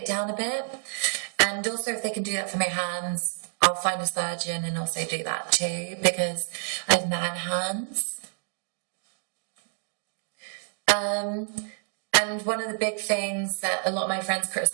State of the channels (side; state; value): left; silent; digital silence